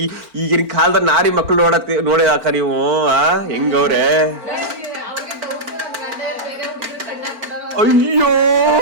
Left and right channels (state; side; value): late; left; 4.4 ms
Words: ಈಗಿನ ಕಾಲದ ನಾರಿ ಮಕ್ಳು ನೋಡಿದಾಕ ನೀವು ಹೆಂಗವ್ರೆ. ಅಯ್ಯೋ,